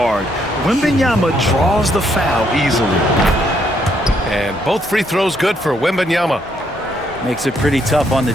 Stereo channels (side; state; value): both; normal; correlation 0.73